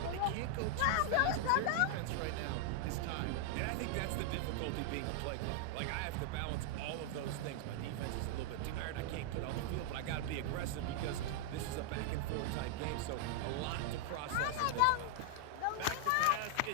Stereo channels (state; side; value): different; both; correlation 0.00